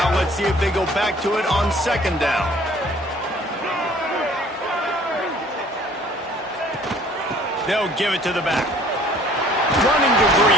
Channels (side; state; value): both; normal; correlation 0.55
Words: Let's see if they go back to it on 2nd down. They'll give it to the back. Running to